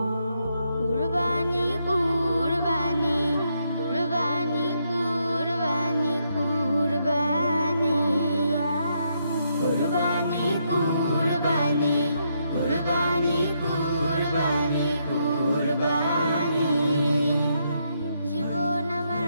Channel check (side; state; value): both; inverted; correlation -0.77